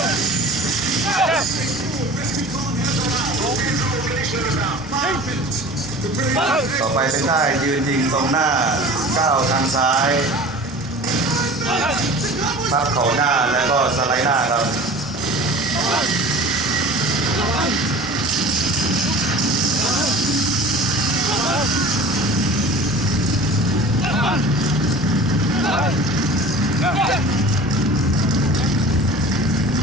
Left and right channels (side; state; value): both; normal; correlation 0.40